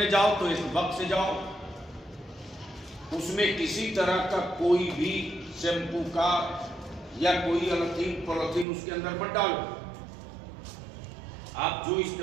जाओ तो एक वक्त से जाओ, उसमें किसी तरह का कोई भी शैम्पू का या कोई पॉलिथीन उसके अंदर मत डालो। आप जो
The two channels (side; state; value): left; drops out; at 8.7 s